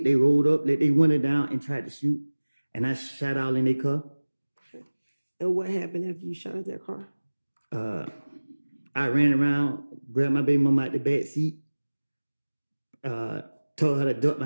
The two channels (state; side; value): inverted; both; correlation -1.00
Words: They rolled up, let their window down, and tried to shoot. And I shot all in their car. And what happened after you shot at their car? I ran around, grabbed my baby mama out the back seat, told her to duck